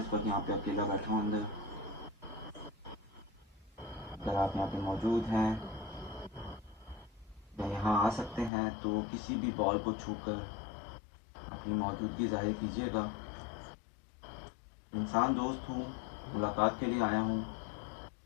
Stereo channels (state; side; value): drops out; right; at 8.5 s